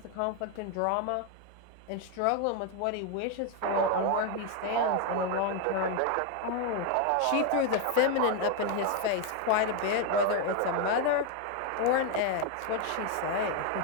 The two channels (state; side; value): different; both; correlation 0.01